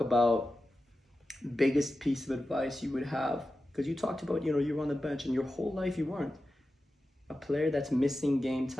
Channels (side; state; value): both; normal; correlation 0.93